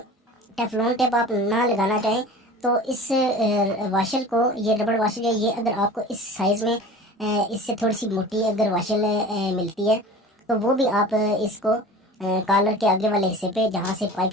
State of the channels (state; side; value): normal; both; correlation 0.39